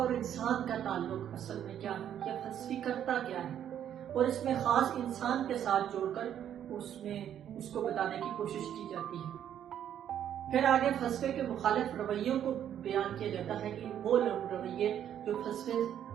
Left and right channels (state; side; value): quieter; left; 10.0 dB